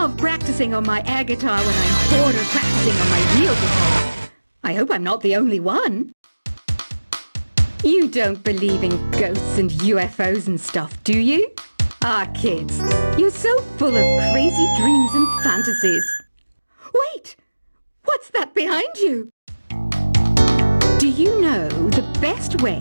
practicing on my air guitar when I'm bored of practicing on my real guitar. I hope I'm not the only one. You don't believe in ghosts and UFOs and stuff, do you? Ah, kids, you're so full of crazy dreams and fantasies. Wait! What's that behind you? Do you know the best way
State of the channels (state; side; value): inverted; both; correlation -1.00